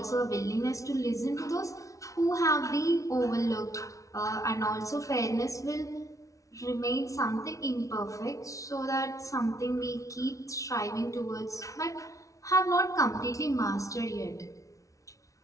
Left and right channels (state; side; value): late; right; 0.16 ms